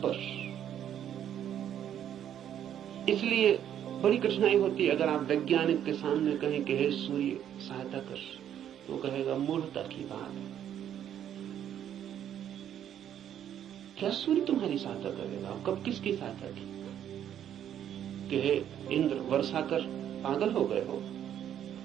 पर। इसलिए बड़ी कठिनाई होती है अगर आप वैज्ञानिक के सामने कहें कि हे सूर्य सहायता कर, तो कहेगा मूर्खता की बात है। क्या सूर्य तुम्हारी सहायता करेगा? कब किसकी सहायता की? कि हे इंद्र वर्षा कर, पागल हो गए हो?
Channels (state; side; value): quieter; left; 10.1 dB